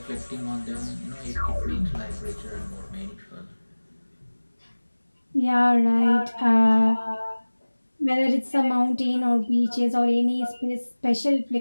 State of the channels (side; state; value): both; inverted; correlation -1.00